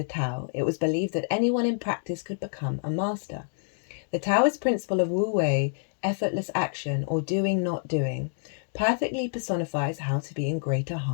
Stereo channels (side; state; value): right; silent; digital silence